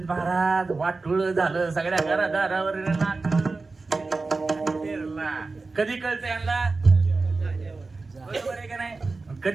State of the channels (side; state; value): left; quieter; 3.8 dB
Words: महाराज वाटुळ झालं सगळ्या घरादारावर. कधी कळतं यांना? बरोबर आहे का नाही?